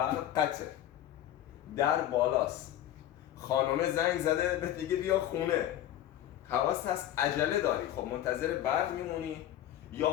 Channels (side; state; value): right; quieter; 12.2 dB